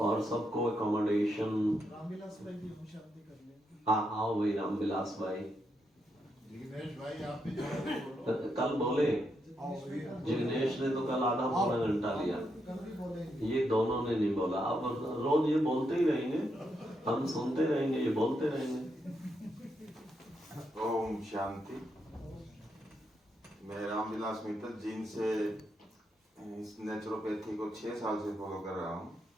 सबको अकोमोडेशन। रामविलास भाई भी हम शांति कर ले। हाँ, आओ भाई रामविलास भाई। जिग्नेश भाई आप भी जोड़ोगे फोटो। कल बोले आओ भैया। जिग्नेश ने तो कल आधा पौना घंटा लिया, कल भी बोलेंगे। ये दोनों ने नहीं बोला। अब रोज ये बोलते ही रहेंगे, हम सुनते रहेंगे, ये बोलते रहेंगे। ओम शांति। मैं रामविलास मित्तल जीन से इस नेचुरोपैथी को 6 साल से फॉलो कर रहा हूँ।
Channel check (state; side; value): normal; both; correlation 0.81